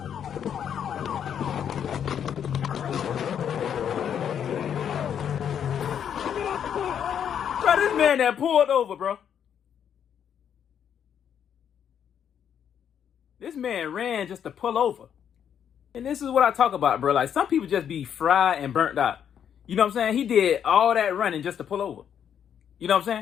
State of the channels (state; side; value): quieter; right; 8.7 dB